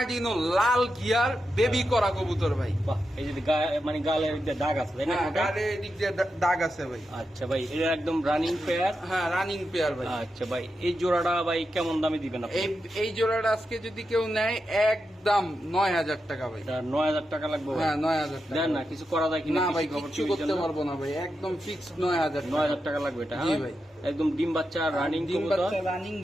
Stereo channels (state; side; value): normal; both; correlation 0.88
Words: লাল গিয়ার বেবি করা কবুতর ভাই। বাহ, এই যে মানে গালের দিকে দাগ আছে তাই না? গালের দিক দিয়ে দাগ আছে ভাই। আচ্ছা ভাই, এটা একদম রানিং পেয়ার? হ্যাঁ রানিং পেয়ার ভাই। আচ্ছা ভাই, এই জোড়াটা ভাই কেমন দামে দিবেন আপনি? এই জোড়াটা আজকে যদি কেউ নেয় একদম 9000 টাকা ভাই। 9000 টাকা লাগবে? হ্যাঁ 9000 টাকা। দেন না, কিছু করা যায় কিনা? না ভাই কিছু করতে পারবো না ভাই, একদম ফিক্সড 9000 টাকা লাগবে এটা। জি ভাই। একদম ডিম বাচ্চা রানিং ডিম বাচ্চা রানিং